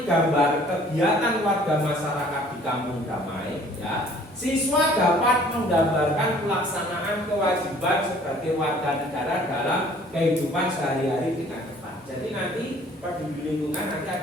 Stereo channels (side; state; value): both; normal; correlation 0.55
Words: gambar kegiatan warga masyarakat di Kampung Damai, ya, siswa dapat menggambarkan pelaksanaan kewajiban sebagai warga negara dalam kehidupan sehari-hari dengan tepat. Jadi nanti peduli lingkungan nanti